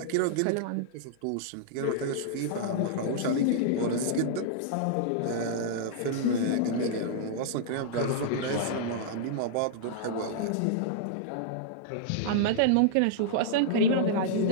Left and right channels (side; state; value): both; different; correlation -0.01